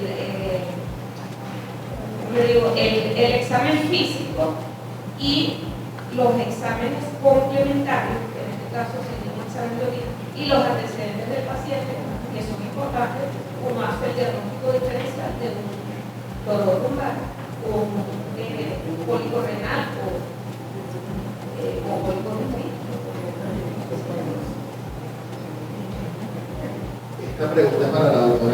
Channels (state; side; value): identical; both; correlation 1.00